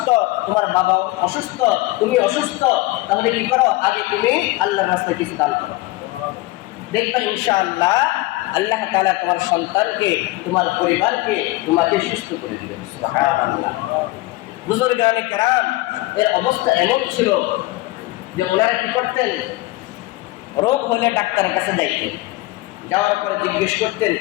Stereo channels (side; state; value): right; quieter; 19.9 dB